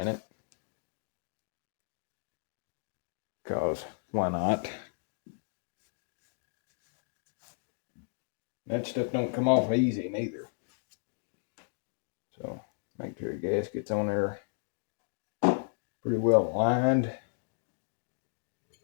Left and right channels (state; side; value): silent; right; digital silence